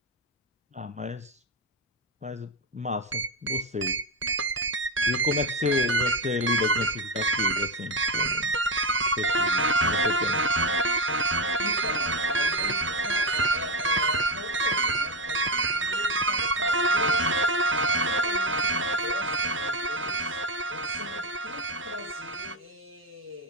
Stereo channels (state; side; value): normal; both; correlation 0.12